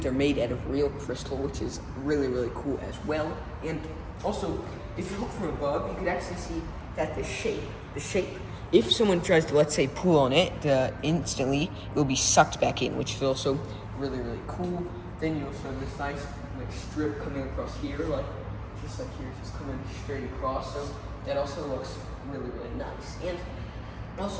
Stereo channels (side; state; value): both; identical; correlation 1.00